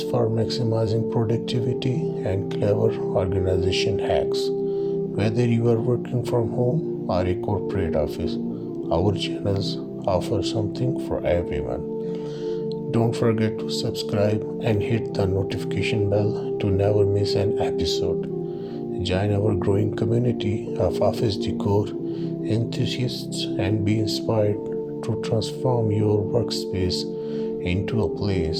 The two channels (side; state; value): both; identical; correlation 1.00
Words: for maximizing productivity, and clever organization hacks. Whether you are working from home or a corporate office, our channels offer something for everyone. Don't forget to subscribe and hit the notification bell to never miss an episode. Join our growing community of office decor enthusiasts and be inspired to transform your workspace into a